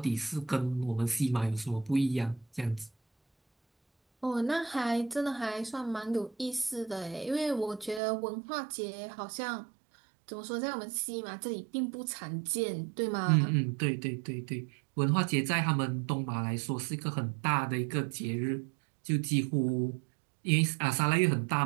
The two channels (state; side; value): drops out; left; at 8.0 s